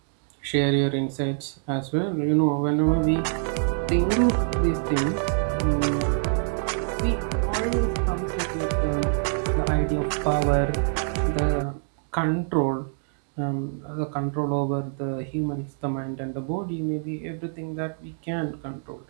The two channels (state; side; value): silent; left; digital silence